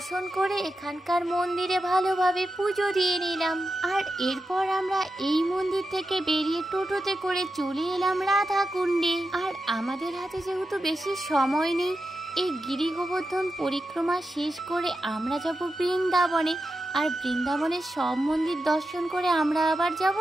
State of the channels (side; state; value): both; normal; correlation 0.89